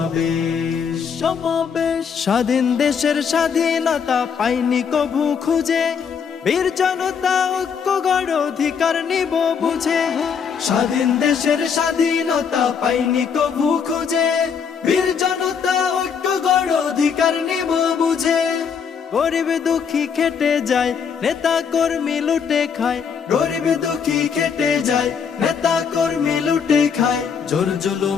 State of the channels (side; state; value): right; quieter; 6.7 dB